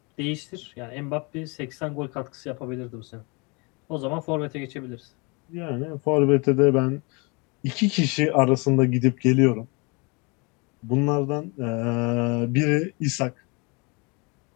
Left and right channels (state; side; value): quieter; right; 30.1 dB